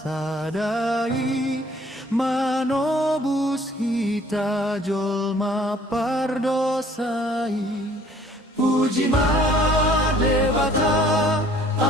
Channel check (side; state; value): both; normal; correlation 0.57